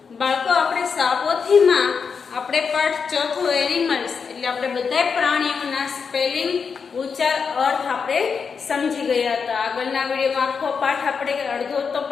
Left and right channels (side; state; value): right; quieter; 5.8 dB